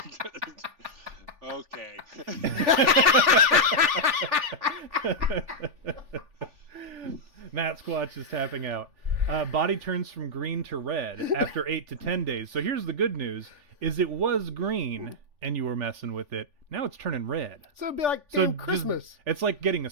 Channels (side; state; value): left; late; 3.4 ms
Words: Okay. Matt Squatch is tapping out. Body turns from green to red after 8 to 10 days. So here's the good news: is it was green and you were messing with it. Now it's turning red. So it'd be like damn Christmas. It's like getting